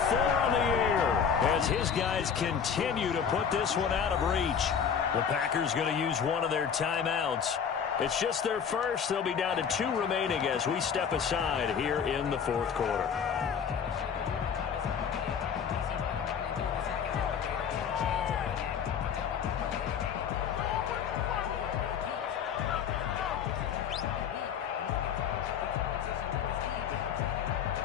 on the year, as his guys continue to put this one out of reach. The Packers going to use one of their timeouts. It's just their first. They'll be down to 2 remaining as we step aside here in the 4th quarter.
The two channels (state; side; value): quieter; right; 7.3 dB